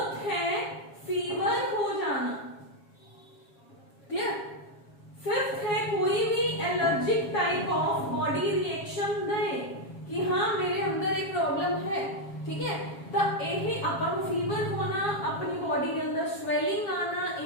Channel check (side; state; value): right; late; 7.3 ms